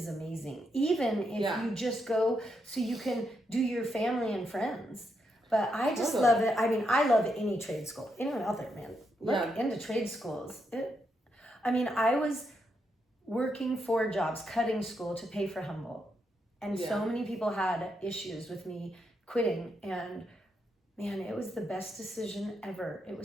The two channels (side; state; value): both; normal; correlation 0.81